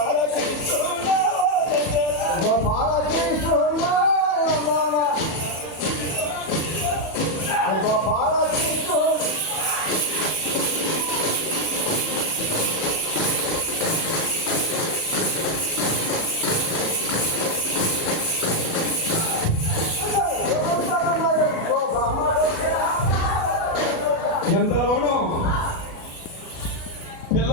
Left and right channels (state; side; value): late; right; 37 ms